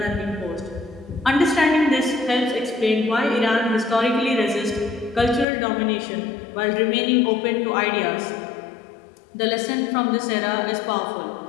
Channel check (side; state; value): right; drops out; at 5.5 s